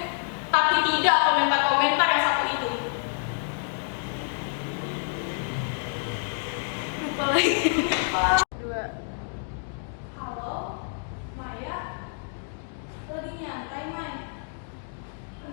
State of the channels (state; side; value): silent; right; digital silence